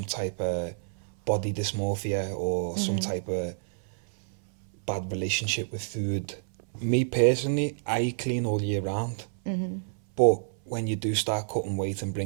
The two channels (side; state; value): left; silent; 59 dB below the other